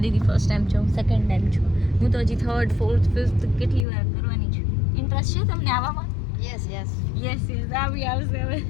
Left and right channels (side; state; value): right; drops out; at 3.9 s